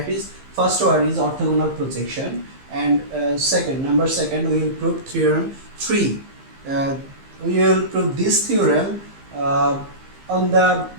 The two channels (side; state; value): left; late; 15 ms